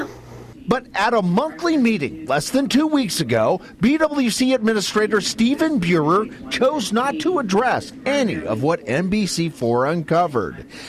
But at a monthly meeting less than 2 weeks ago, BWC Administrator Stephen Buehrer chose not to address any of what NBC4 uncovered.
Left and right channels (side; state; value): both; identical; correlation 1.00